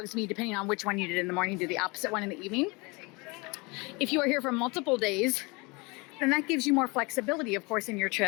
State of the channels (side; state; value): right; quieter; 27.1 dB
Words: depending on which one you did in the morning, do the opposite one in the evening. If you are here for multiple days, then that gives you more flexibility, of course, in your